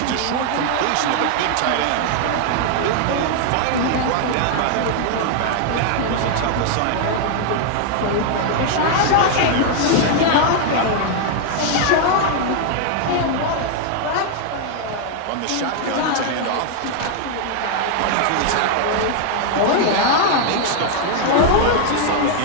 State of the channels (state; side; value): different; both; correlation 0.00